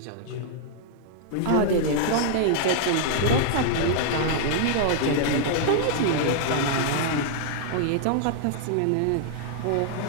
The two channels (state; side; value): different; both; correlation -0.01